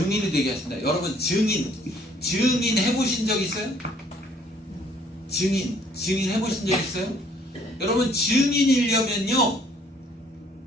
되게 하신다. 여러분 증인 해보신 적 있어요? 증인 해보신 적 있어요? 여러분 증인이려면요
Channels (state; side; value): normal; both; correlation 0.61